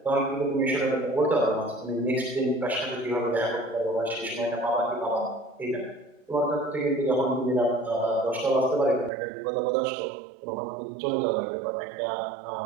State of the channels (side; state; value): left; drops out; at 9.1 s